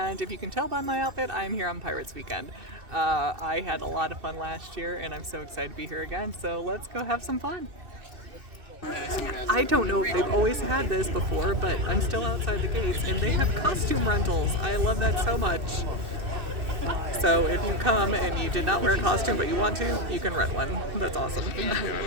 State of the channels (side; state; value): left; late; 2.6 ms